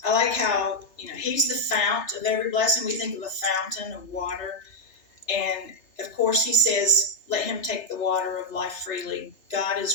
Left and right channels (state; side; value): late; right; 3.3 ms